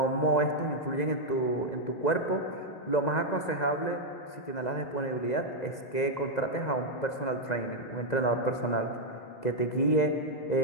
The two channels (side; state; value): right; late; 2.0 ms